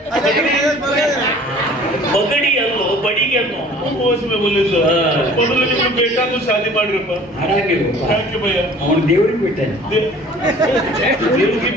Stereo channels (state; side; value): normal; both; correlation 0.49